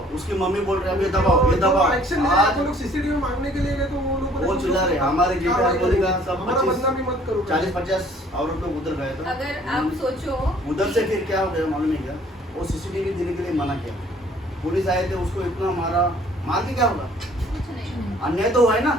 उसकी मम्मी बोल रही है अभी दबाव, ये दबाव। एक्शन ले रहे हैं, आज वो लोग सीसीटीवी मांगने के लिए गए तो वो लोग वो चिल्ला रहे, हमारे JPR बोलेगा सब हमारा बदनामी मत करो। 40-50 औरत लोग उधर गए थे। अगर आप सोचो उधर से फिर क्या हो गया मालूम है क्या, वो CCTV देने के लिए मना किया, पुलिस आए थे, उसको इतना मारा, मार के क्या होगा, कुछ नहीं। अन्याय तो हुआ है ना,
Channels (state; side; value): normal; both; correlation 0.57